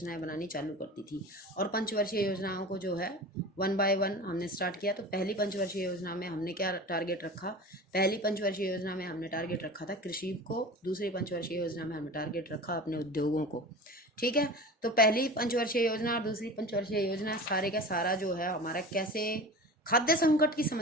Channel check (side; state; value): both; normal; correlation 0.34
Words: बनानी चालू कर दी थी। और पंचवर्षीय योजनाओं को जो है 1 बाय 1 हमने स्टार्ट किया। तो पहली पंचवर्षीय योजना में हमने क्या टारगेट रखा, पहली पंचवर्षीय योजना में हमने टारगेट रखा था कृषि को, दूसरी पंचवर्षीय योजना में हमने टारगेट रखा अपने उद्योगों को, ठीक है। तो पहली पंचवर्षीय योजना और दूसरी पंचवर्षीय योजना सारे का सारा जो है हमारा कैसे खाद्य संकट की